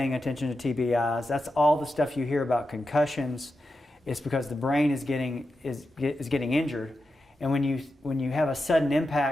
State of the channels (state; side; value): normal; both; correlation 0.89